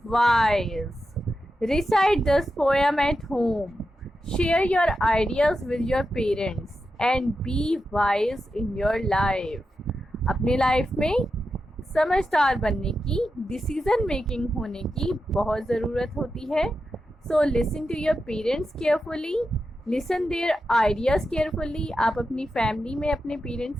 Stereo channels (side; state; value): both; normal; correlation 0.89